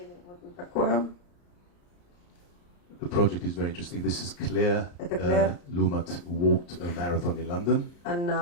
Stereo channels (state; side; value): late; right; 34 ms